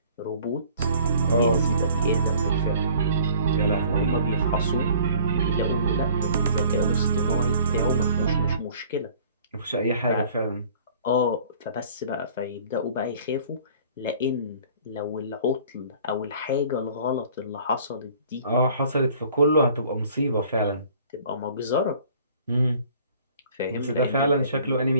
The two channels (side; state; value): both; inverted; correlation -0.51